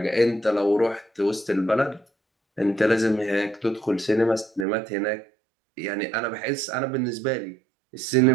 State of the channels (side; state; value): left; drops out; at 4.7 s